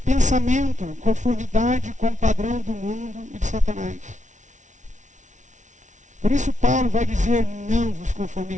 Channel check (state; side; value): late; left; 0.36 ms